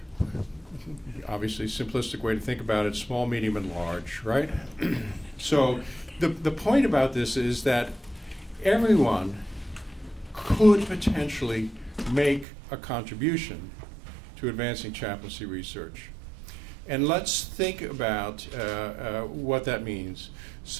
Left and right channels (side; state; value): left; drops out; at 12.5 s